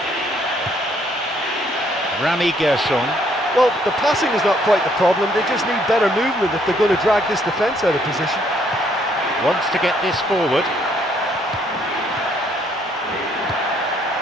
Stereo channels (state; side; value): normal; both; correlation 0.67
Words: Rami Gershon. Well, the passing is not quite the problem, they just need better movement if they're going to drag this defence out of position. Wants to get this forward.